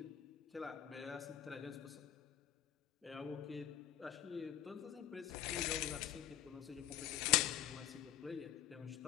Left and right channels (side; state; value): right; quieter; 11.4 dB